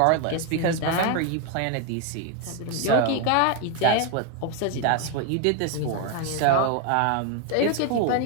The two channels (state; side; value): different; both; correlation 0.01